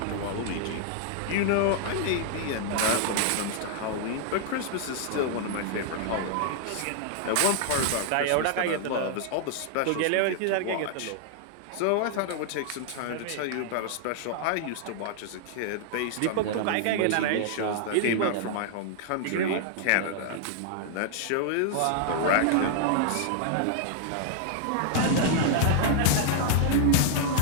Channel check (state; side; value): different; both; correlation 0.00